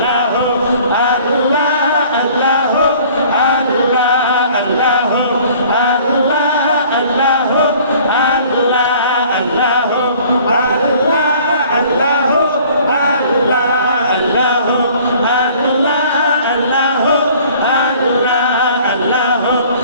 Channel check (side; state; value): both; inverted; correlation -0.53